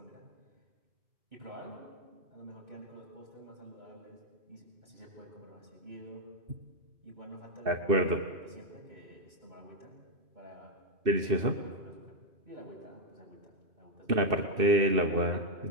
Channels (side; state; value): left; late; 2.6 ms